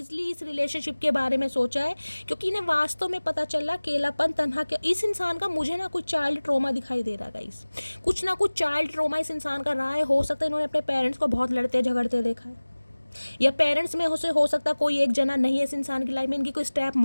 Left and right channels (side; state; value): both; inverted; correlation -1.00